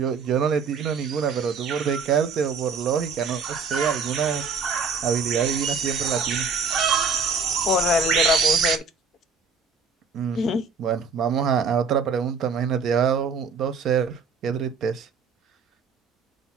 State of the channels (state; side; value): quieter; left; 4.9 dB